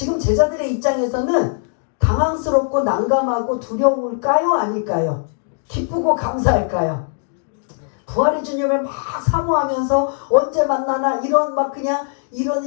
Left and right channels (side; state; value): right; silent; 64 dB below the other